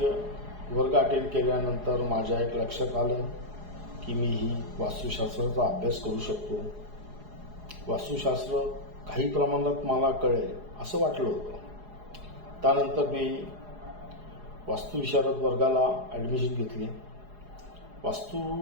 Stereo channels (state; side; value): late; left; 4.8 ms